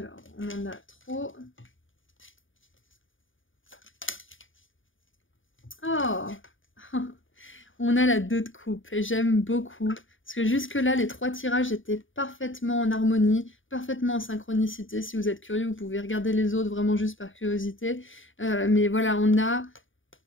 on en a trop. Oh on a la 2 de coupe et j'aime beaucoup. Parce que jusque-là, les 3 tirages étaient parfaitement en harmonie, parfaitement en synchronicité. Si vous êtes curieux, vous pouvez regarder les autres vraiment juste par curiosité. Mais voilà, on a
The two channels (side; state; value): right; late; 0.57 ms